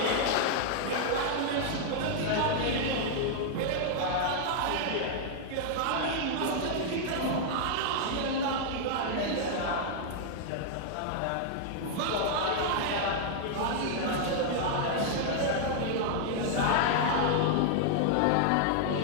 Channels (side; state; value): both; different; correlation -0.01